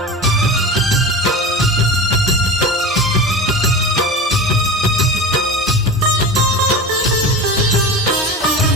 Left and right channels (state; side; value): normal; both; correlation 0.31